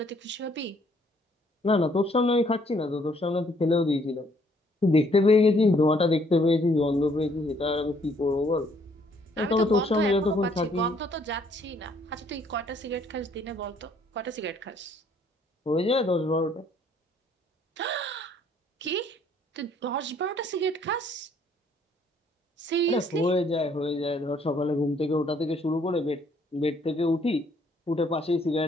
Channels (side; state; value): both; normal; correlation 0.65